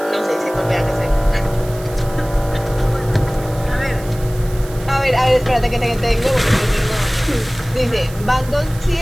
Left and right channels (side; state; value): right; noise; hiss, 18 dB below the sound